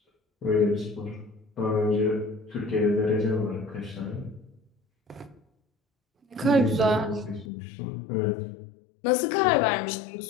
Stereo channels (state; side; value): drops out; right; at 7.5 s